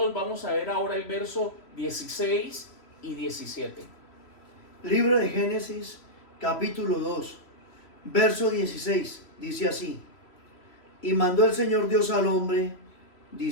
vamos a ver ahora el verso 16 y 17. Libro de Génesis, capítulo 2, verso 16, dice así: Y mandó el Señor Dios al hombre,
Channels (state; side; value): late; right; 3.0 ms